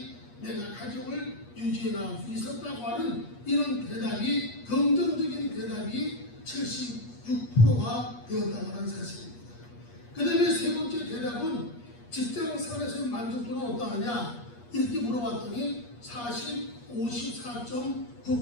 내가 가정을 유지해 나갈 수 있었다고 하는 이런 대답이 긍정적인 대답이 76%가 되었다고 하는 사실입니다. 그 다음에 세 번째 대답은 직장생활에서의 만족도는 어떠하냐 이렇게 물어봤더니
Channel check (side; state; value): right; late; 8.4 ms